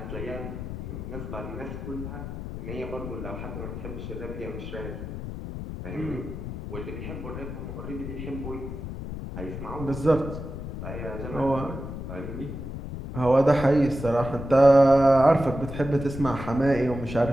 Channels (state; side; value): noise; left; rumble, 8 dB below the sound